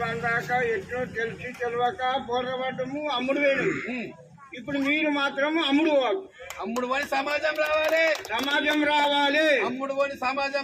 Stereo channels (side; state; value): both; identical; correlation 1.00